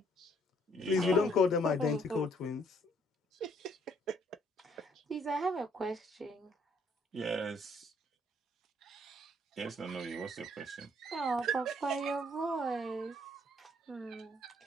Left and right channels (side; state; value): both; normal; correlation 0.66